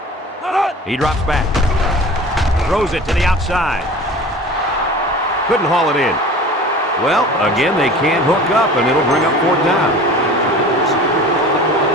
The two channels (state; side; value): normal; both; correlation 0.40